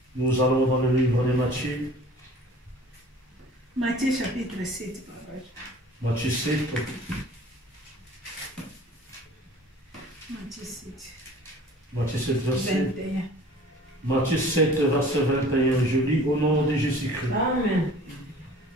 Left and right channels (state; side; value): normal; both; correlation 0.47